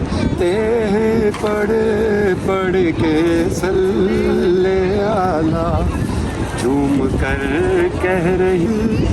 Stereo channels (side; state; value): both; identical; correlation 1.00